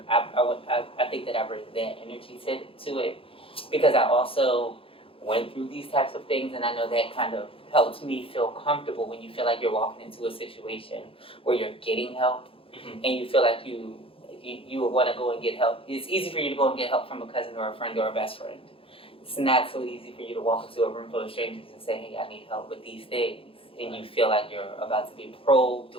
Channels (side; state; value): right; late; 0.27 ms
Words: think that I bring that energy to it because I also went through these types of things, and I know that kind of helps me feel comfortable when you feel like you're walking into a situation where you're getting help. And you feel like you would want to go and get help. It's easy for you to go and get help from a cousin or a friend or a best friend. It's not so easy for you to walk into a room full of strangers and say, hey, I need help with these things. And you feel like you're about to be probed,